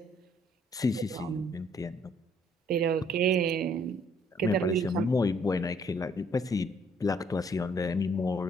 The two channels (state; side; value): normal; both; correlation 0.65